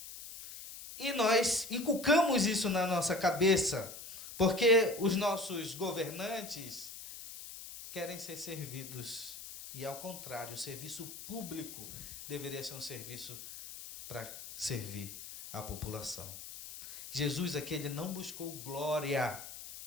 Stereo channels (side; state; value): left; noise; hiss, 12 dB below the sound